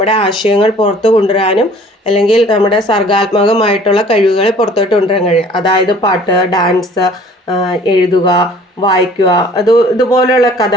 ആശയങ്ങൾ പുറത്തു കൊണ്ടുവരാനും അല്ലെങ്കിൽ നമ്മുടെ സർഗാത്മകമായിട്ടുള്ള കഴിവുകൾ പുറത്തോട്ട് കൊണ്ടുവരാൻ കഴിയും. അതായത് പാട്ട്, ഡാൻസ്, എഴുതുക, വായിക്കുക, ഇതുപോലെയുള്ള കഥ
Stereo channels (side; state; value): both; normal; correlation 0.52